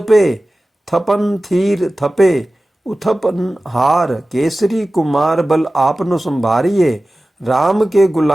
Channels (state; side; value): normal; both; correlation 0.96